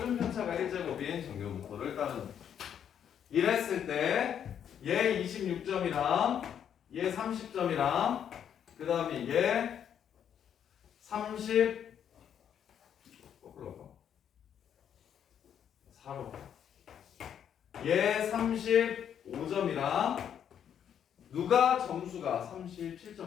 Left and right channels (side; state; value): right; quieter; 8.9 dB